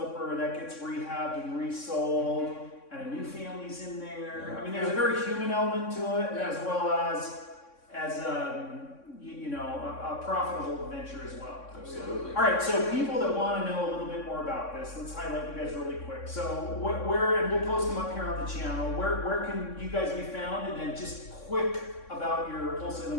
that gets rehabbed and resold, and a new family's in there. I mean, there's a very human element to it, as well as a profitable venture as well. Absolutely. All right, so people that want to know a little bit more about this, let's highlight you guys really quick. So where, and we'll post them up here on the channel, where can you guys be found? And then just quick about your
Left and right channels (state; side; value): late; right; 3.6 ms